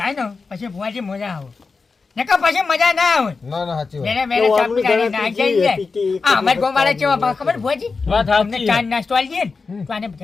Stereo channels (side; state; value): right; quieter; 4.5 dB